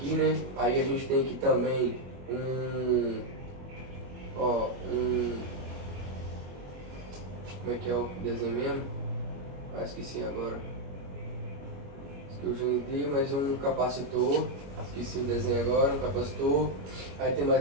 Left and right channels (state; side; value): late; left; 21 ms